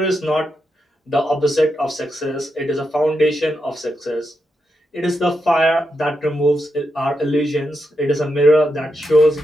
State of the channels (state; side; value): normal; both; correlation 0.85